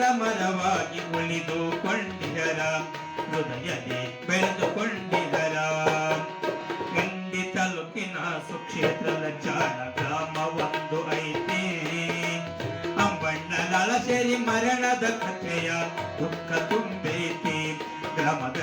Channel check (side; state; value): both; identical; correlation 1.00